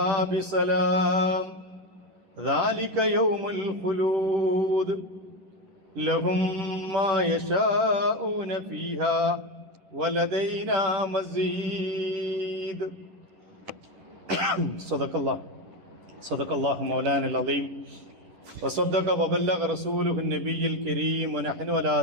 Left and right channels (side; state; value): left; late; 11 ms